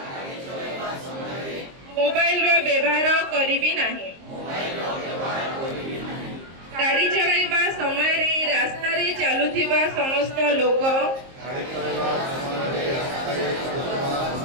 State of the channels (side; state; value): left; late; 22 ms